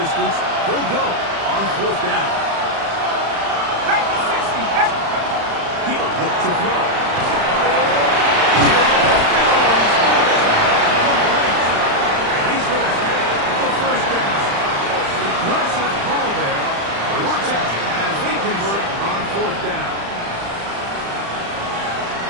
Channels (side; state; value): left; late; 35 ms